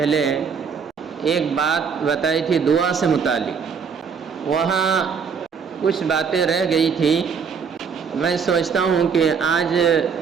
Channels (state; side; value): quieter; left; 6.2 dB